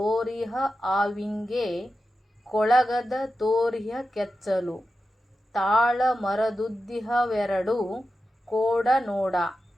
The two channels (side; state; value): both; normal; correlation 0.91